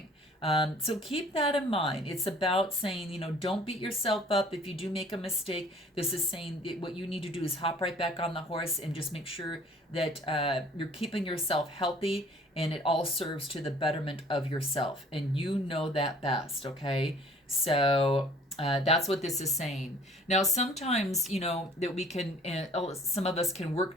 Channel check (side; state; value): both; normal; correlation 0.53